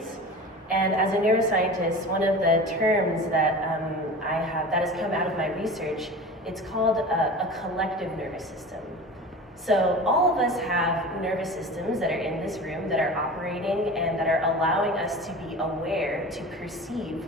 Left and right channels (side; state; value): both; normal; correlation 0.34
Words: And as a neuroscientist, one of the terms that I have that has come out of my research, it's called a collective nervous system. So all of us have nervous systems that are in this room that are operating and that are allowing us to be aware, to perceive